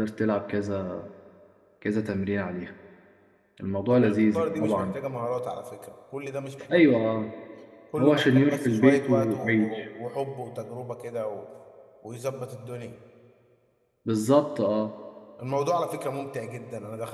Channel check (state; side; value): identical; both; correlation 1.00